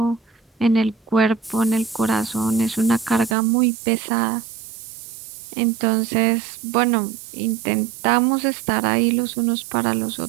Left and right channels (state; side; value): drops out; left; at 3.4 s